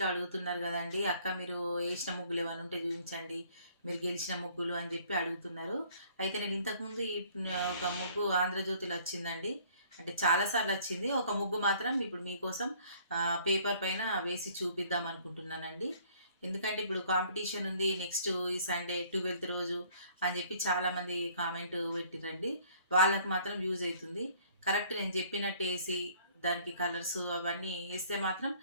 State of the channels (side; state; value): both; inverted; correlation -0.58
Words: అడుగుతున్నారు గదండీ! అక్క మీరు ఏసిన ముగ్గులు ఏమన్నా ఉంటే చూయించండి. మీరు గెలిచిన ముగ్గులు అని జెప్పి అడుగుతున్నారు. అయితే నేను ఇంతకుముందు ఒక ముగ్గు ఆంధ్రజ్యోతిలో వచ్చిందండి. అంటే చాలా సార్లు వచ్చింది. ఒక ముగ్గు మాత్రం ఇప్పుడు మీకోసం పేపర్ పైన వేసి చూపిద్దాం అనుకుంటున్నానండి. ఎందుకంటే ఇప్పుడు కాంపిటీషన్ ఉంది. నెక్స్ట్ ఈ సండే 12థ్ రోజు అని జెప్పి చాలామంది కామెంట్ పెట్టిర్రండి. వాళ్ళకి మాత్రం యూజ్ అయితుంది. కరెక్ట్ నేను చెప్పినట్టేసి దానికి కలర్సు అవన్నీ ఏస్తే మాత్రం